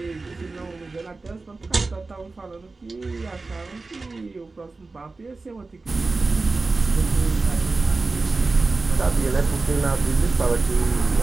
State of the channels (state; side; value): quieter; left; 3.7 dB